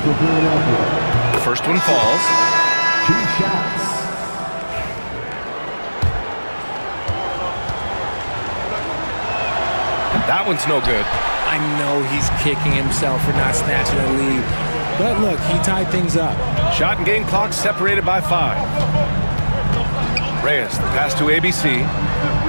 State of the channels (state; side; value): inverted; both; correlation -1.00